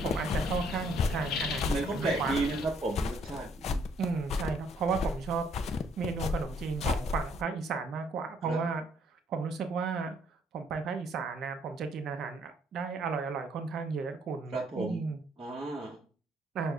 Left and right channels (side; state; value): both; normal; correlation 0.66